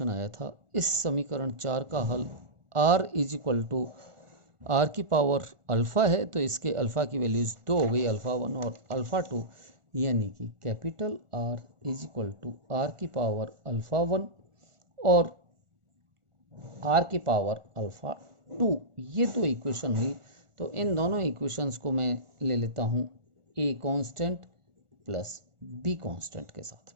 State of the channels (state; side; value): late; left; 1.4 ms